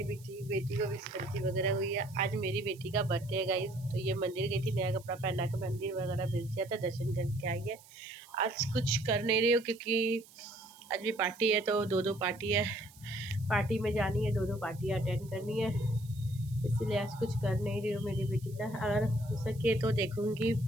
बेटी को भी सर्दी वगैरह हुई है। आज मेरी बेटी का बर्थडे है गाइस, तो ये मंदिर गई थी, नया कपड़ा पहना के मंदिर वगैरह भेज दिया था, दर्शन करके आई है। आज कुछ कर नहीं रही हूँ क्योंकि आज भी पार्टी है, तो दो पार्टी है, पार्टी में जानी है, दो पार्टियाँ अटेंड करनी है, इसीलिए आज कुछ कर नहीं रही हूँ मेरी बेटी का। अगर हो सके तो देखूँगी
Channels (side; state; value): right; noise; hiss, 23 dB below the sound